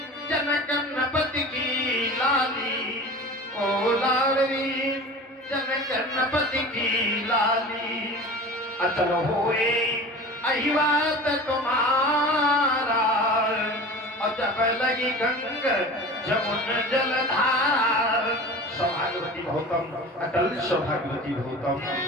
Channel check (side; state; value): both; normal; correlation 0.36